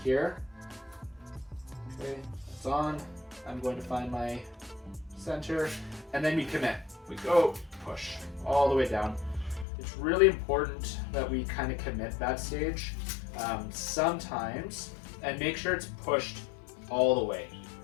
here. Okay, it's on. I'm going to find my center, and then we commit. We go, push all the way down. It's really important that we kind of commit that stage sometimes, and make sure it's pushed all the way.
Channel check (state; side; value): drops out; right; at 9.7 s